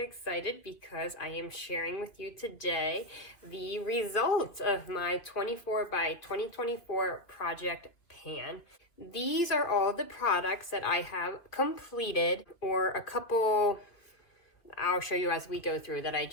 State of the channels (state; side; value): late; right; 2.6 ms